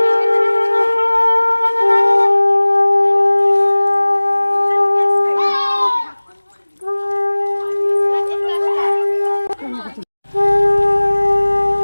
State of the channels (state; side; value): inverted; both; correlation -1.00